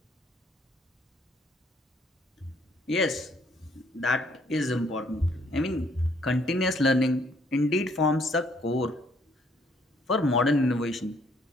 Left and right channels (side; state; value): both; normal; correlation 0.66